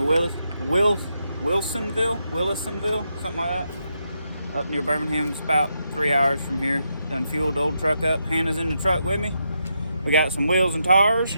Wilsonville, something like that, up near Birmingham. It's about 3 hours from here. Done fueled the old truck up. Hannah's in the truck with me. We got some wheels and tires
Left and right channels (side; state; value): both; inverted; correlation -0.82